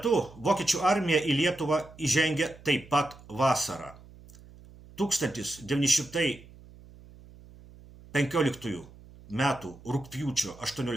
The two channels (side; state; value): right; noise; hum, 21 dB below the sound